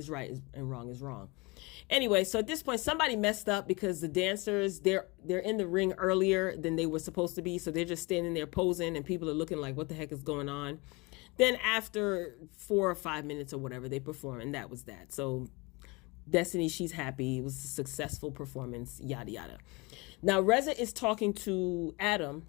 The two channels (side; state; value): right; quieter; 26.4 dB